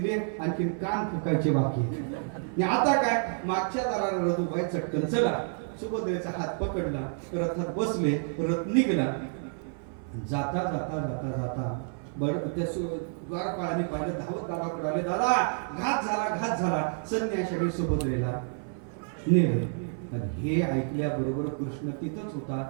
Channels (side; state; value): left; silent; 56 dB below the other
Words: आणखी कान फुकायचे बाकी. आता काय? मागच्या दाराला रथुबाई चटकन चला, सुभद्रेचा हात पकडला, रथात बसले, रथ निघला. जाता जाता जाता जाता त्या द्वारपाळाने पाहिलं, धावत दादाकडे आले, दादा घात झाला. संन्याशाने सुभद्रेला नेलं. पण हे ऐकल्याबरोबर कृष्ण तिथंच होता.